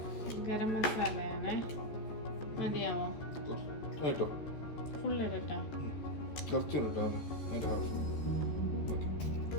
ഗരം മസാലയാണ്. മതിയാവോ? ഫുൾ ഇടട്ടെ?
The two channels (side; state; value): right; late; 14 ms